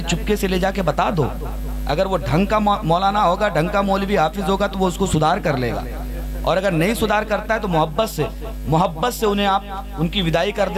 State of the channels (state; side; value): identical; both; correlation 1.00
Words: चुपके से ले जाके बता दो। अगर वो ढंग का मौलाना होगा, ढंग का मौलवी हाफिज होगा, तो वो उसको सुधार कर लेगा। और अगर नहीं सुधार करता है तो मोहब्बत से उन्हें आप उनकी विदाई कर